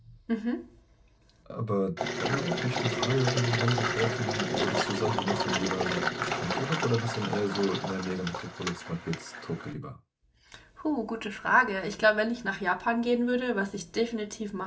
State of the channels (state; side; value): identical; both; correlation 1.00